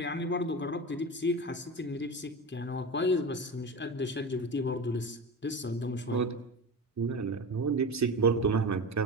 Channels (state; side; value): normal; both; correlation 0.26